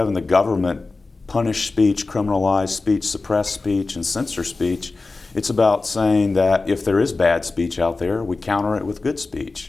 the government punish speech, criminalize speech, suppress speech, and censor speech, it's about saying that if there is bad speech out there, we counter it with good speech.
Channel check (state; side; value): quieter; right; 3.6 dB